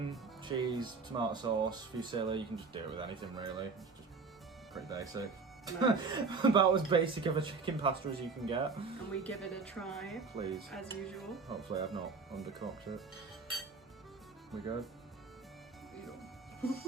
cheese, tomato sauce, fusilli. You can just do it with anything really. It's just pretty basic. Nice. About as basic of a chicken pasta as you can get. And we give it a try. Please. As usual. Hopefully I've not undercooked it. We good?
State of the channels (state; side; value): quieter; left; 4.5 dB